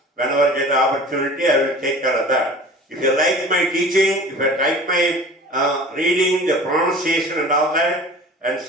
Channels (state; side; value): normal; both; correlation 0.42